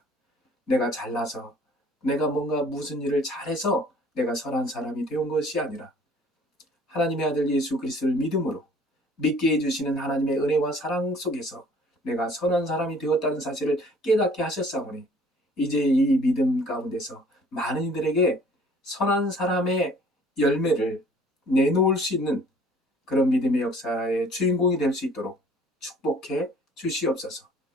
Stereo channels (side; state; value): both; normal; correlation 0.54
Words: 내가 잘나서 내가 뭔가 무슨 일을 잘해서 내가 선한 사람이 되온 것이 아니라 하나님의 아들 예수 그리스도를 믿음으로 믿게 해주시는 하나님의 은혜와 사랑 속에서 내가 선한 사람이 되었다는 사실을 깨닫게 하셨사오니 이제 이 믿음 가운데서 많은 이들에게 선한 사람의 열매를 내놓을 수 있는 그런 믿음의 역사의 주인공이 될 수 있도록 축복해 주시옵소서.